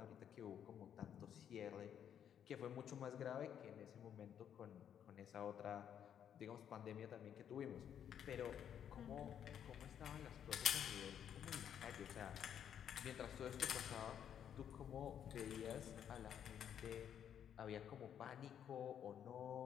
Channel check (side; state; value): right; quieter; 9.1 dB